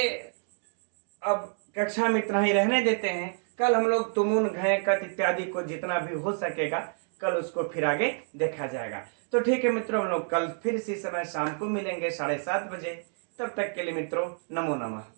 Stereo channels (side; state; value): left; silent; 59 dB below the other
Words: अब कक्षा में इतना ही रहने देते हैं। कल हम लोग तुमुन, घय, कत इत्यादि को जितना भी हो सकेगा कल उसको फिर आगे देखा जाएगा। तो ठीक है मित्रों, हम लोग कल फिर इसी समय शाम को मिलेंगे 7:30 बजे। तब तक के लिए मित्रों नमो नमः।